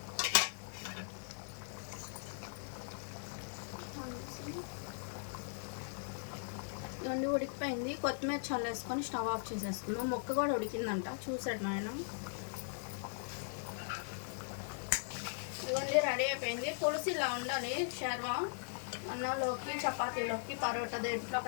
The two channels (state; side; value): silent; right; 52 dB below the other